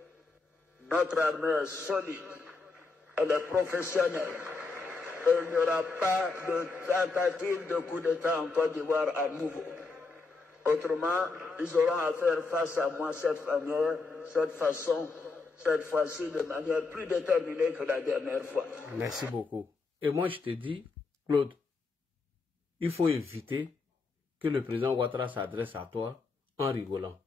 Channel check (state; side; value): quieter; right; 4.0 dB